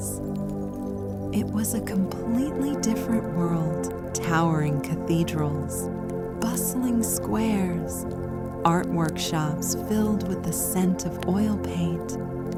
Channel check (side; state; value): both; identical; correlation 1.00